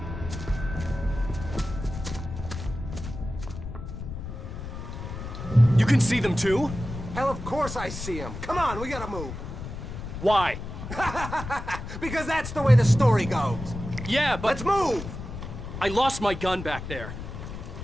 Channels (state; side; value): noise; left; rumble, 8 dB below the sound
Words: You can see them too? Hell, of course I see them. Come on, we gotta move. Why? Because that's the way the story goes. Yeah, but... Let's move! I lost my gun back there.